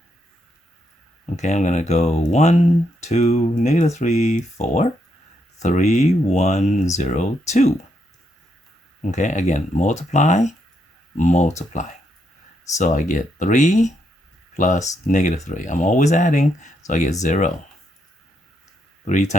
Okay, I'm going to go 1, 2, negative 3, 4, 3, 1, 0, 2. Okay, again, multiply. So I get 3 plus negative 3. I'm always adding, so I get 0. 3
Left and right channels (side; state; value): both; normal; correlation 0.78